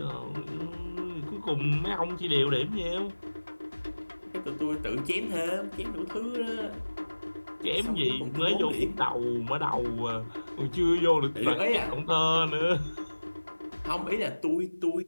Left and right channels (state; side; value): inverted; both; correlation -1.00